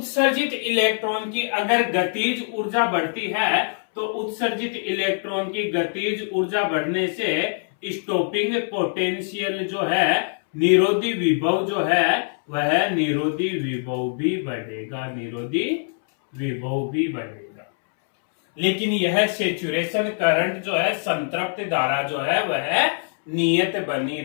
इलेक्ट्रॉन की अगर गतिज ऊर्जा बढ़ती है तो उत्सर्जित इलेक्ट्रॉन की गतिज ऊर्जा बढ़ने से स्टॉपिंग पोटेंशियल जो है, निरोधी विभव जो है वह निरोधी विभव भी बढ़ेगा, निरोधी विभव भी बढ़ेगा। लेकिन यह सेचुरेशन करंट जो है, संतृप्त धारा जो है वह नियत बनी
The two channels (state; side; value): silent; right; 63 dB below the other